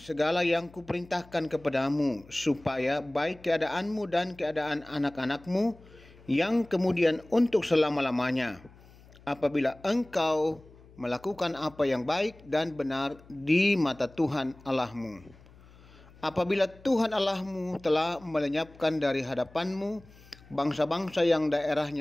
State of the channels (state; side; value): noise; left; hum, 24 dB below the sound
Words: yang kuperintahkan kepadamu, supaya baik keadaanmu dan keadaan anak-anakmu yang kemudian untuk selama-lamanya, apabila engkau melakukan apa yang baik dan benar di mata Tuhan Allahmu. Apabila Tuhan Allahmu telah melenyapkan dari hadapanmu bangsa-bangsa yang